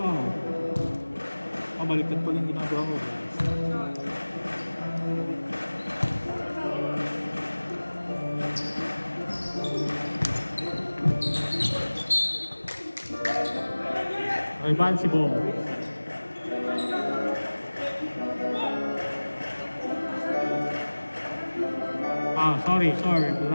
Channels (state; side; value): inverted; both; correlation -1.00